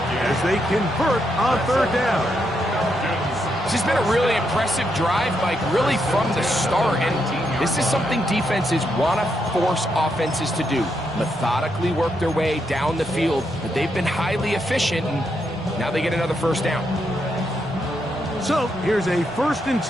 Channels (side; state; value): both; normal; correlation 0.80